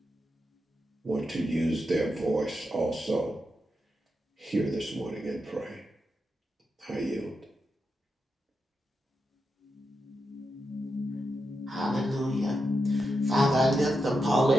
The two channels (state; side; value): normal; both; correlation 0.86